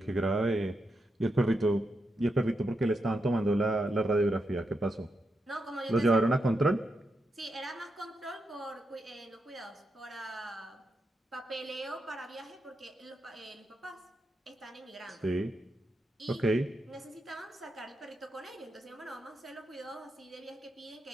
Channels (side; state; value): both; normal; correlation 0.85